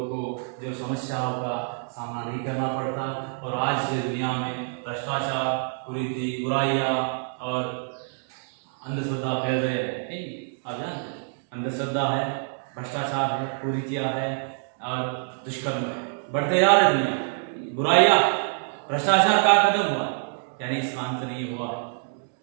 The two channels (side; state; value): left; silent; 61 dB below the other